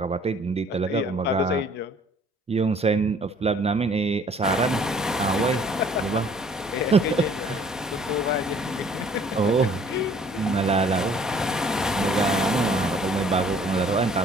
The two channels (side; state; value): both; normal; correlation 0.56